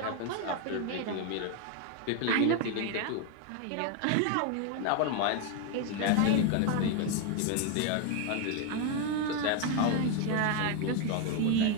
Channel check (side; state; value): both; different; correlation 0.02